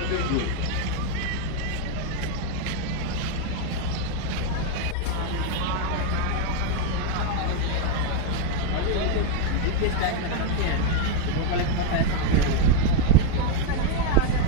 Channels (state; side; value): different; both; correlation 0.01